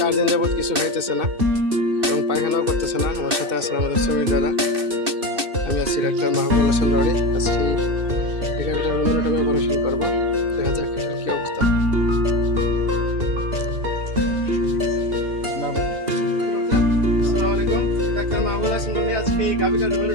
দিন যাবৎ কিছু খাইতেছে না এবং পায়খানাও করতেছে না। আমার সাথে আছেন আমাদের শ্রমিক দাদা, আমি আছি ডাক্তার মাহবুবুল হাসান রনি। আজকে এই গাভিটার রুমের অপারেশন করবো, দেখা যাক এটার কি অবস্থা। আসসালামু আলাইকুম, ডাক্তার মাহবুবুল হাসান রনি। আজকে এই গাভিটার রুমের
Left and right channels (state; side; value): late; left; 2.6 ms